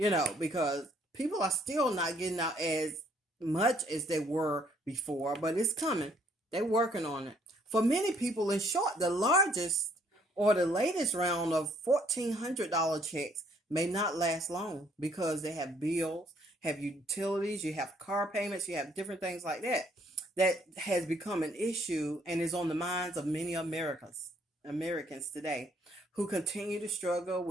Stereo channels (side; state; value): both; normal; correlation 0.66